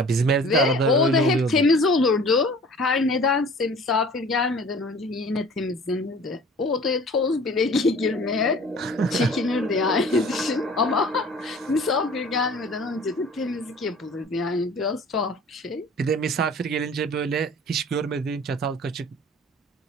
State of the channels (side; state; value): both; normal; correlation 0.47